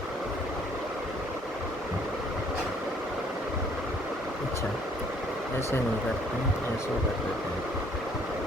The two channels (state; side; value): normal; both; correlation 0.62